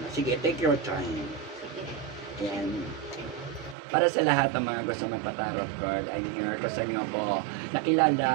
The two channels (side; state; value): left; drops out; at 3.8 s